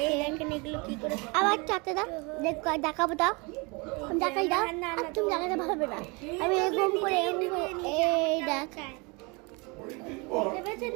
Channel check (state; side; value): quieter; left; 28.8 dB